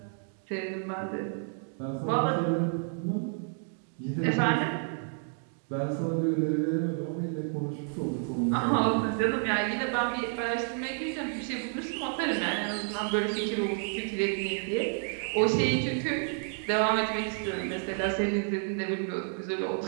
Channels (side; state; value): left; silent; 58 dB below the other